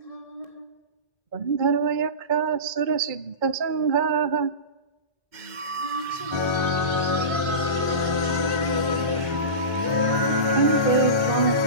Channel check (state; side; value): late; left; 2.1 ms